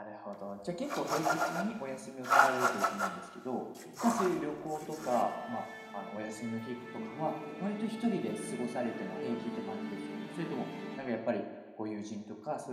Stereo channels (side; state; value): both; identical; correlation 1.00